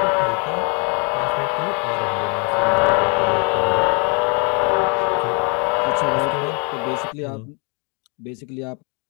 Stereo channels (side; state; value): right; quieter; 35.1 dB